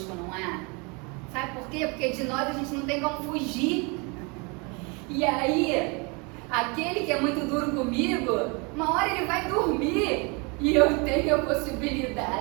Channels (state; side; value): quieter; left; 30.4 dB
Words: não é? Sabe por quê? Porque de nós a gente não tem como fugir. E aí, aquele que é muito duro comigo, uma hora ele vai dormir e eu tenho a